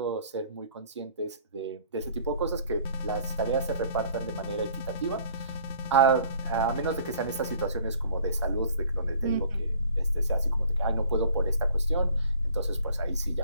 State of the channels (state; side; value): inverted; both; correlation -0.54